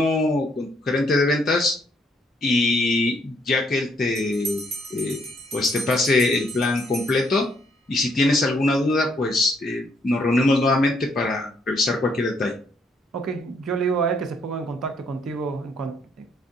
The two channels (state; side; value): normal; both; correlation 0.70